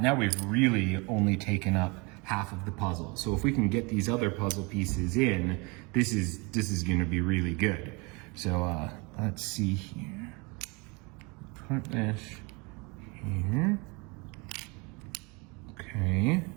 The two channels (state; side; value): quieter; left; 28.8 dB